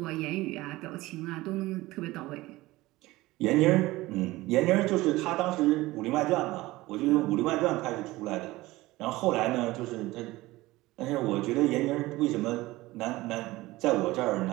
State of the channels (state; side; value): quieter; left; 19.0 dB